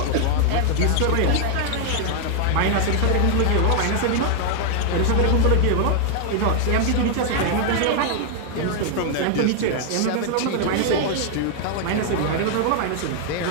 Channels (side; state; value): both; different; correlation 0.00